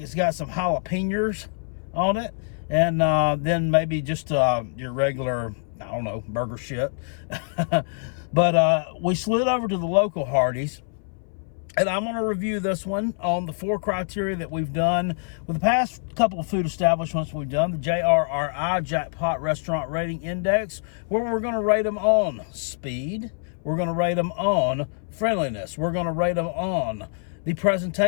got some jalapenos on it, and then maybe just your regular, I don't know, burger shit. But we slid over to the local Hardee'S, and I'm going to review this one on the 4 criteria that we've done with the past couple of food establishments we've done, the JRRI, Jackpot Restaurant Rating Index, where we're going to rate them on speed, we're going to rate them on friendliness, we're going to rate them on the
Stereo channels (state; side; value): silent; right; 61 dB below the other